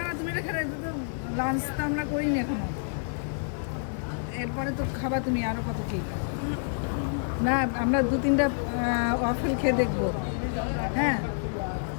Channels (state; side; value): silent; right; digital silence